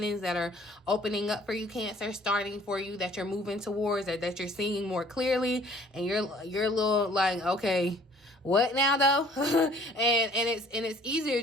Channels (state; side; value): normal; both; correlation 0.55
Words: that are opening up for you, Cancer, starting for you, that you're moving towards, or that you're seeing more clearly, and you're a little like, okay, what now though? and it's easier